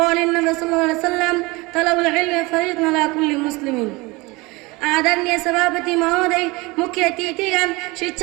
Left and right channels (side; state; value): left; quieter; 23.9 dB